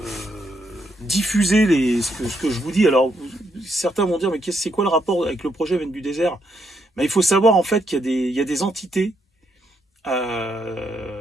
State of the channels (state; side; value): normal; both; correlation 0.77